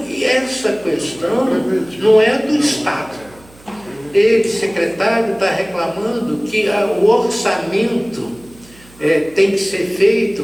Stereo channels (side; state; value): right; noise; hum, 25 dB below the sound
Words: essa questão não é do Estado. Ele, secretário, está reclamando que o orçamento tem que ser